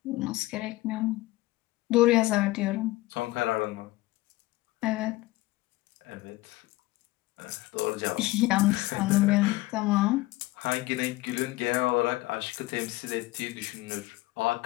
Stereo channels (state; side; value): quieter; right; 19.1 dB